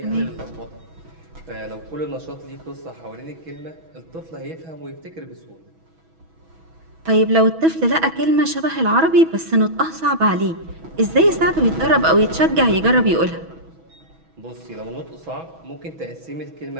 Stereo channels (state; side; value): late; left; 6.1 ms